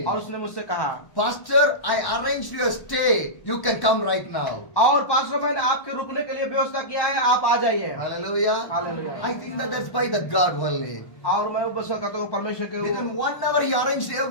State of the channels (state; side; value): late; right; 1.0 ms